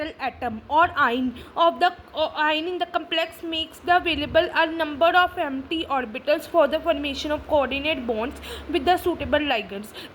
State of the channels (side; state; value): both; identical; correlation 1.00